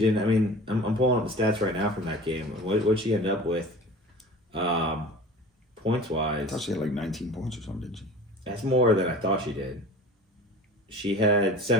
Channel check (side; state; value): both; normal; correlation 0.40